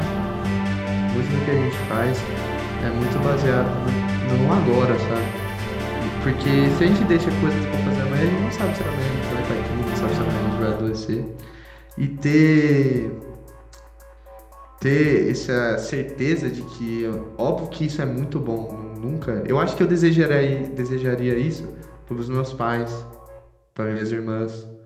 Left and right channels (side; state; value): both; identical; correlation 1.00